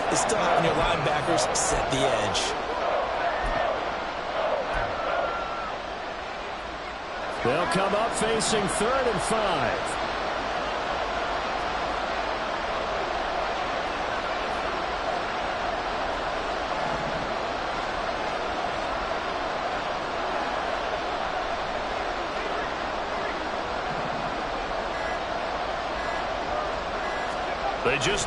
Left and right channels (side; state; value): both; identical; correlation 1.00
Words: is still having your linebackers set the edge. They'll come up facing 3rd and 5. They